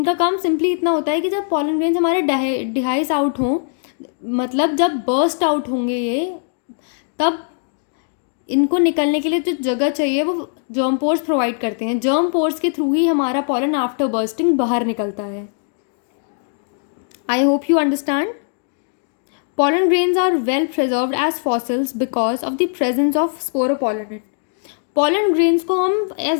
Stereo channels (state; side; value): silent; right; digital silence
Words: काम सिंपली इतना होता है कि जब pollen grains हमारे डिहाइस आउट हों, मतलब जब बर्स्ट आउट होंगे ये, तब इनको निकलने के लिए जो जगह चाहिए वो जर्म पोर्स प्रोवाइड करते हैं. जर्म पोर्स के थ्रू ही हमारा पॉलन आफ्टर बर्स्टिंग बाहर निकलता है. I hope you understand. Pollen grains are well preserved as fossils because of the presence of sporopollenin. Pollen grains को हम